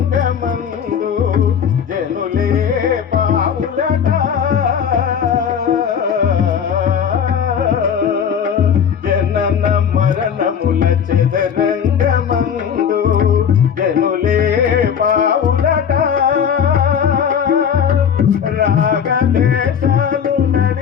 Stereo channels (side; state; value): right; quieter; 7.7 dB